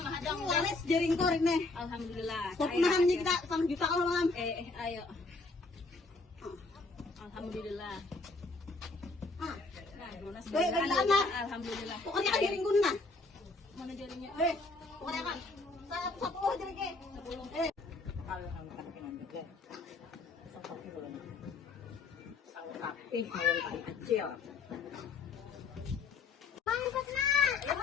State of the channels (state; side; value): quieter; right; 3.6 dB